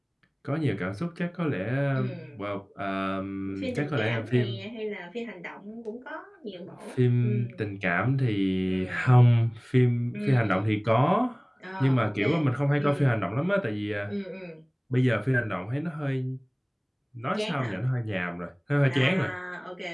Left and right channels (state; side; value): identical; both; correlation 1.00